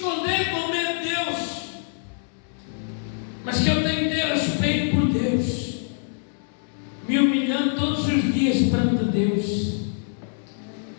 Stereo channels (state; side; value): silent; right; digital silence